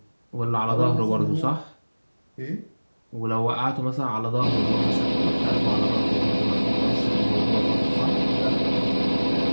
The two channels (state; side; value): inverted; both; correlation -1.00